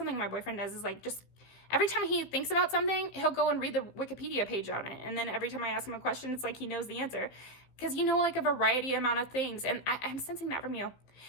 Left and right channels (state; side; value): late; right; 16 ms